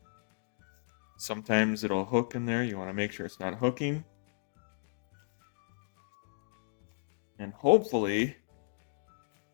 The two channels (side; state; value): right; silent; digital silence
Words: Sometimes it'll hook in there. You want to make sure it's not hooking. And hopefully